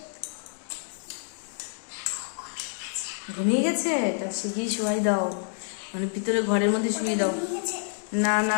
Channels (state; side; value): silent; right; digital silence